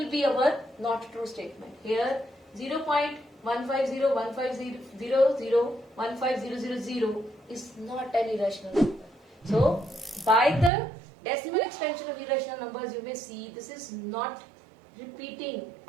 be our not true statement. Here 0.15015001500 is not an irrational number. So by the decimal expansion of irrational numbers, you may see this is not repeating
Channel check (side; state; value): left; drops out; at 10.7 s